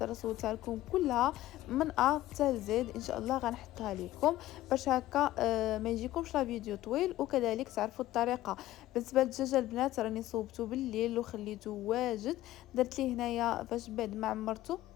راه صورتها لكم كلها من ا حتى زد ان شاء الله غنحطها لكم باش هكا ما يجيكمش لا فيديو طويل وكذلك تعرفوا الطريقه. بالنسبه للدجاج البنات راني صوبته بالليل وخليته واجد. درت ليه هنايا فاش بعد ما عمرته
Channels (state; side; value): quieter; right; 15.3 dB